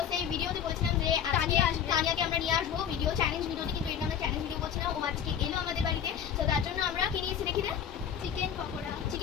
সেই ভিডিওতে বলেছিলাম যে তানিয়াকে আমরা নিয়ে আসবো ভিডিও চ্যালেঞ্জ ভিডিওটি, কিন্তু এটা আমরা চ্যালেঞ্জ ভিডিও করছি না। ও আজকে এলো আমাদের বাড়িতে, তো তার জন্য আমরা কি নিয়েছি দেখি না, চিকেন পকোড়া।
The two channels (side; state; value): right; quieter; 8.6 dB